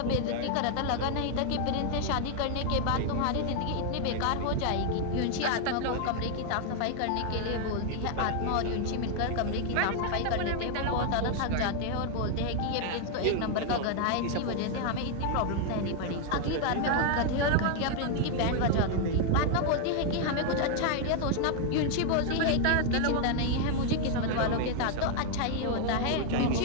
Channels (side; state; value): both; different; correlation 0.00